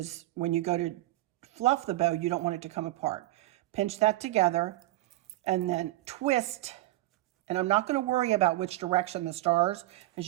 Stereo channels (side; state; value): left; quieter; 17.5 dB